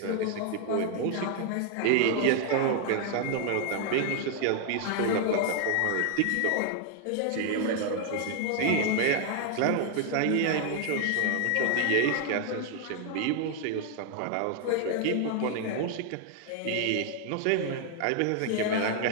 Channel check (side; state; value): both; different; correlation 0.00